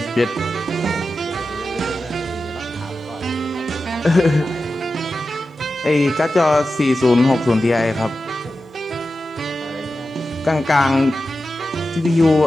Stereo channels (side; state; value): both; normal; correlation 0.92